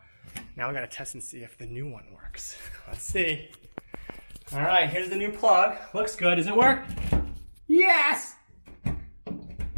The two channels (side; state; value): both; inverted; correlation -1.00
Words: we gotta test and see if the new one works. Let's see. All right, here's the new plug. Looks good. Does it work? Yes!